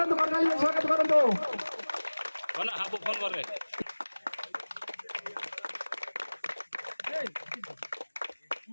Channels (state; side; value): inverted; both; correlation -1.00